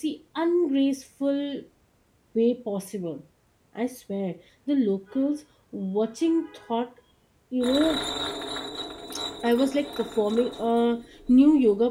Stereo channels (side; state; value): both; identical; correlation 1.00